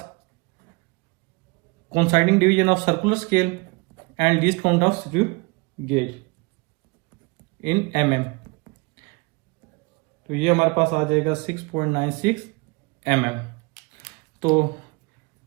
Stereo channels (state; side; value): quieter; left; 28.3 dB